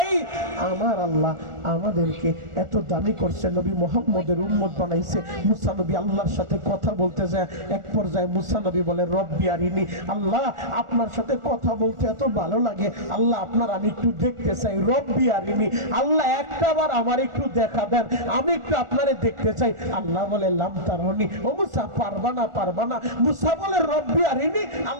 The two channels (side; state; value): left; late; 1.4 ms